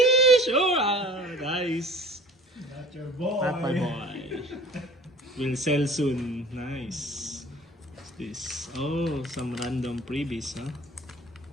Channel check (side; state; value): both; normal; correlation 0.46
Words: oh, nice. Not your boy. Not my boy. Will sell soon. Nice. this? Oh, some random freebies, huh?